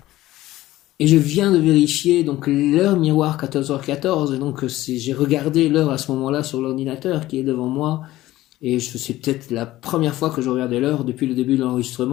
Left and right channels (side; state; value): right; quieter; 16.1 dB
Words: Et je viens de vérifier donc l'heure miroir 14h14, et donc j'ai regardé l'heure à ce moment-là sur l'ordinateur qui est devant moi, et c'est peut-être la première fois que je regardais l'heure depuis le début de